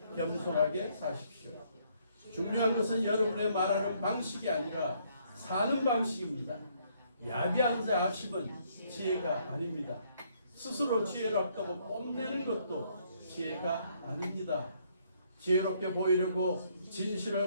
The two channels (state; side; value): inverted; both; correlation -0.68